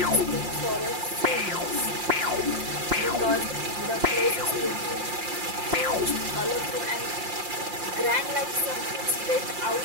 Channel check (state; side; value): late; left; 5.7 ms